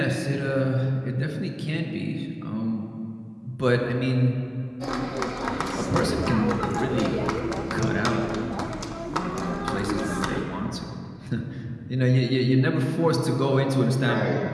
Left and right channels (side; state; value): both; identical; correlation 1.00